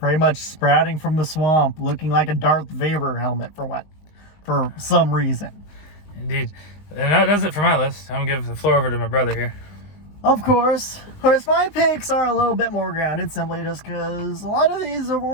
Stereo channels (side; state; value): right; late; 19 ms